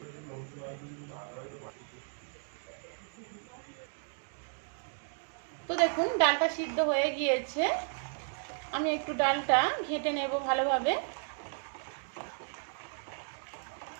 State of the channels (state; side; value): silent; left; 55 dB below the other